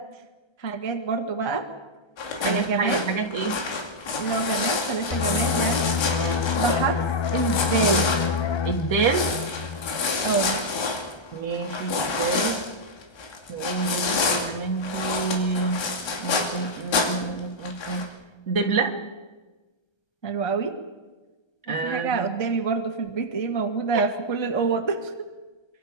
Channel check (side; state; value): right; late; 1.3 ms